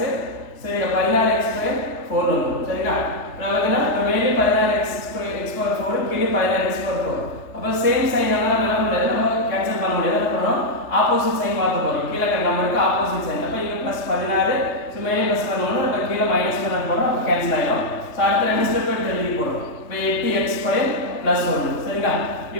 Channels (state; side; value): late; right; 3.3 ms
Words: சரி 16x ஸ்கொயர் 4 வரும். சரிங்களா? நமக்கு மேலே 16x ஸ்கொயர் x பவர் 4 கீழே 16x பவர் 4. அப்போ சேம் சைன் எல்லாம் என்ன முடியாது, நம்ம கேன்சல் பண்ண முடியாது. போறோம் ஆப்போசிட் சைன் மாத்த போறோம். கீழ இருக்க நம்பருக்கு ஆப்போசிட் சைன். அப்ப இங்க +16 சோ மேலே ப்ளஸ் பண்ணனும், அப்ப கீழ மைனஸ் பண்ண போறோம். அப்ப கேன்சல் ஆயிடும். சோ அடுத்த ரெண்டு ஸ்டெப் எடுத்து எழுதி போறோம். இப்போ 8x ஸ்கொயர் +1. சரிங்களா?